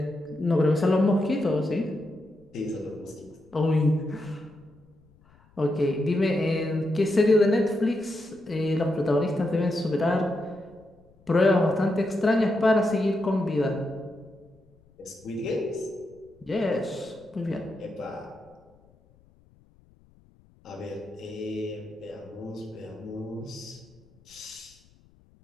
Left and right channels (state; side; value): noise; left; rumble, 30 dB below the sound